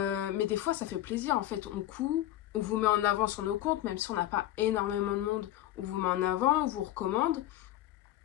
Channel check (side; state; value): right; quieter; 13.8 dB